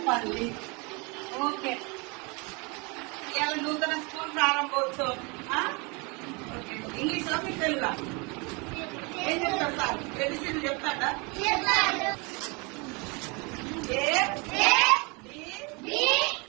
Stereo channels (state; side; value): quieter; left; 29.7 dB